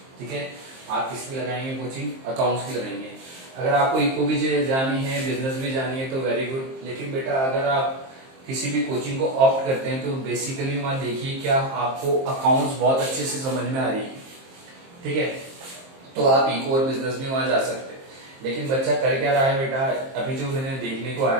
ठीक है। आप किसकी लगाएंगे कोचिंग? अकाउंट्स की लगाएंगे। अगर आपको इको भी जानी है, बिजनेस भी जानी है तो वेरी गुड। लेकिन बेटा अगर आप किसी भी कोचिंग को ऑप्ट करते हैं तो बेसिकली वहां देखिए क्या आपको अकाउंट्स बहुत अच्छे से समझ में आ रही है, ठीक है, तो आप इको और बिजनेस भी वहां जा सकते हैं। लेकिन बच्चा कर क्या रहा है बेटा, अभी जो मैंने देखने को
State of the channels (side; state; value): left; late; 23 ms